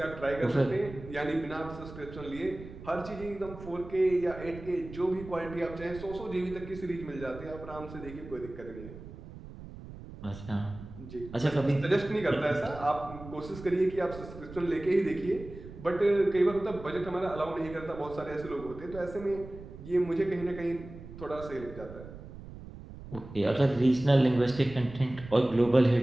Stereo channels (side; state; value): right; noise; rumble, 14 dB below the sound